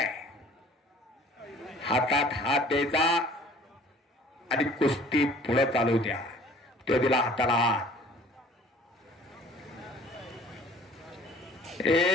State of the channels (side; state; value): both; normal; correlation 0.51